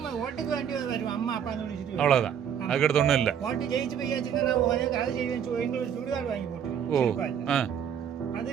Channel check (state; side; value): quieter; left; 8.4 dB